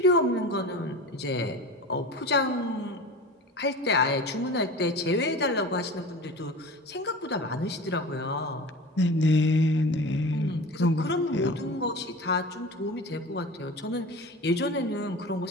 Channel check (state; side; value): normal; both; correlation 0.34